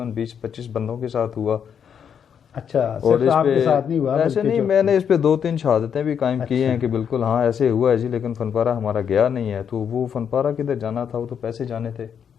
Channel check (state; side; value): quieter; right; 7.8 dB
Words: 20-25 بندوں کے ساتھ ہوا. اچھا، اور صرف آپ کے ساتھ نہیں ہوا؟ ایسے نہیں، میں نے اس پہ 2-3 شہادتیں بھی قائم کی ہیں کہ بالکل ہاں ایسے ہوا ہے جی، لیکن فن پارہ ہمارا گیا نہیں ہے. تو وہ فن پارہ کدھر جانا تھا، وہ تو پیسے جانے تھے.